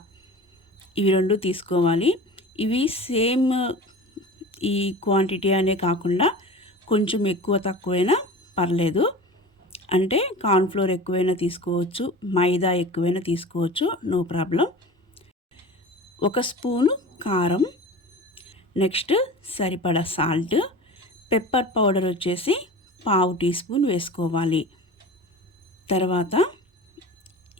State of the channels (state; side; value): normal; both; correlation 0.36